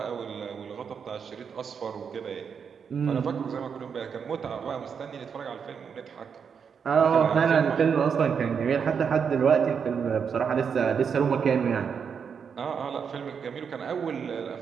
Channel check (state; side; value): quieter; left; 6.7 dB